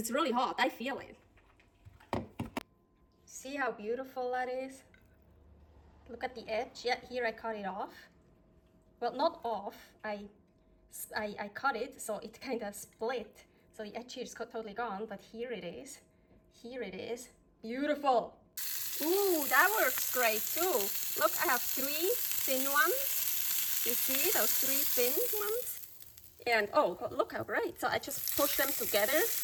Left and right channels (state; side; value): identical; both; correlation 1.00